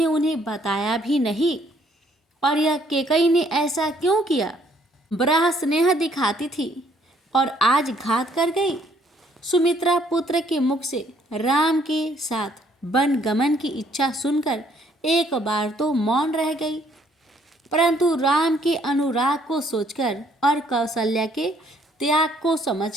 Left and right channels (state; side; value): normal; both; correlation 0.66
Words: उन्हें बताया भी नहीं। और यह कैकेयी ने ऐसा क्यों किया? बड़ा स्नेह दिखाती थी और आज घात कर गई। सुमित्रा पुत्र के मुख से राम के साथ वन गमन की इच्छा सुनकर एक बार तो मौन रह गई, परंतु राम के अनुराग को सोचकर और कौशल्या के त्याग को